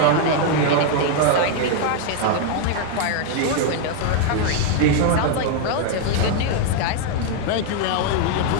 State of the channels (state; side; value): different; both; correlation 0.00